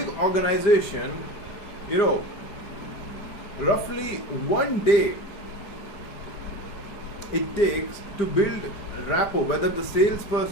organization, roughly 1 day it takes to build rapport, whether the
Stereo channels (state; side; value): late; right; 5.0 ms